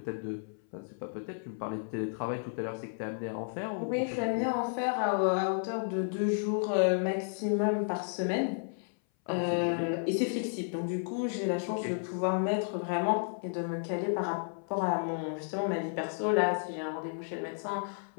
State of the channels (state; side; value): silent; right; 56 dB below the other